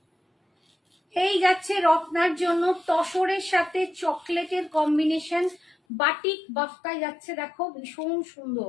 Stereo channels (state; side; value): drops out; right; at 5.8 s